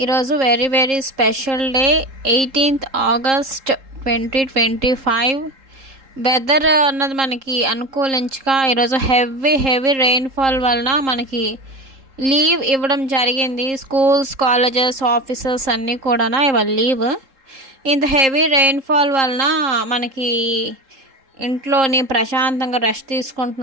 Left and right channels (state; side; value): late; left; 3.7 ms